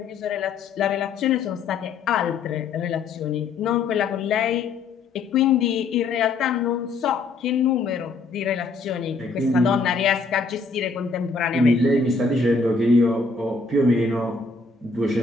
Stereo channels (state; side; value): quieter; right; 4.2 dB